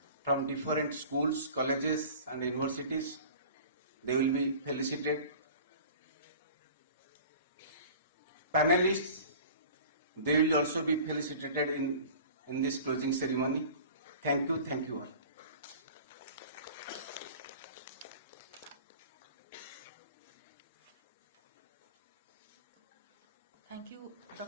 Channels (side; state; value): both; inverted; correlation -0.42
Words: from different schools, colleges and universities. They will be felicitated. Panelists, they will also be felicitated in this closing ceremony. Thank you all. Thank you,